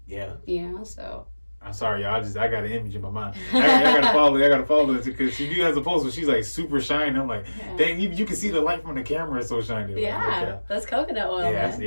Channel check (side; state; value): both; inverted; correlation -1.00